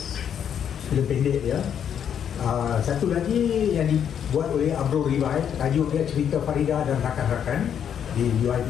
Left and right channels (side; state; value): right; quieter; 8.6 dB